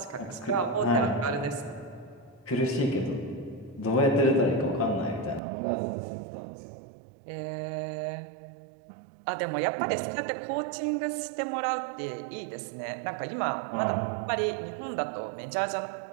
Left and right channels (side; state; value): left; drops out; at 5.4 s